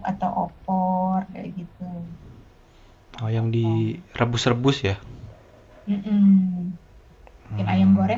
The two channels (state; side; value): identical; both; correlation 1.00